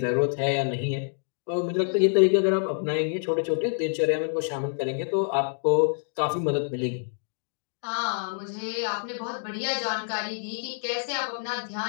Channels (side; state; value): right; silent; digital silence